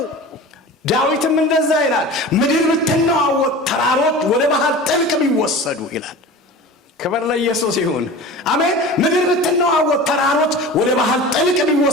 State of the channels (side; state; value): both; normal; correlation 0.36